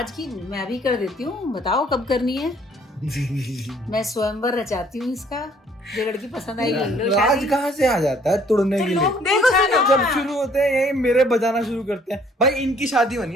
की मैं भी कर देती हूँ, बताओ कब करनी है? मैं स्वयंवर रचाती हूँ इसका, जो लड़की पसंद आएगी ले लो राज शादी। कहाँ से आ जाता है तुड़ने के लिए? देखो सुनो, जब शुरू होते हैं यही मेरे बजाना शुरू करते हैं, भाई इनकी शादी बनी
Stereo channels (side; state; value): both; normal; correlation 0.61